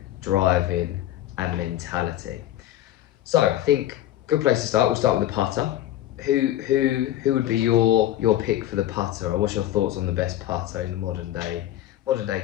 driving, and mentality. So I think good place to start. We'll start with the putter. Who would be your pick for the putter, or what's your thoughts on the best putter in the modern day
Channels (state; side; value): quieter; right; 13.3 dB